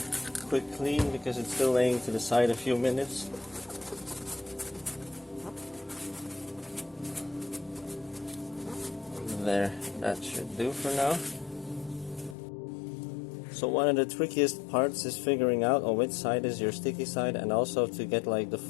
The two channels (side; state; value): right; drops out; at 12.4 s